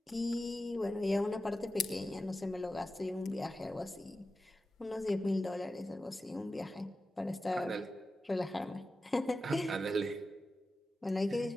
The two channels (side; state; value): both; normal; correlation 0.93